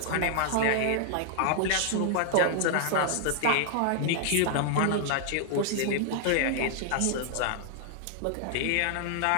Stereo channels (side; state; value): both; different; correlation 0.00